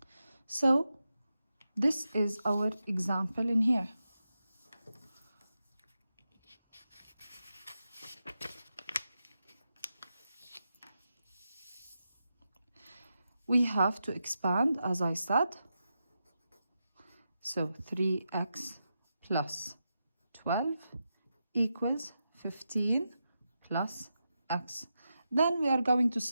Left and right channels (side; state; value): both; inverted; correlation -0.88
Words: So this is our example in here. We have to expand, as I said. So 3x plus 12 equals 15 plus x. Then we are going to